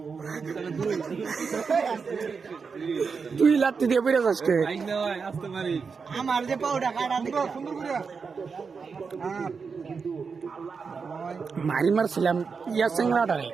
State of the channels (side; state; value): left; quieter; 5.4 dB